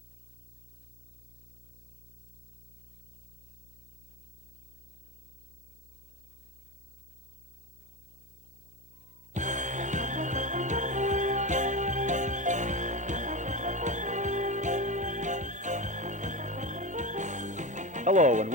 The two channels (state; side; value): normal; both; correlation 0.20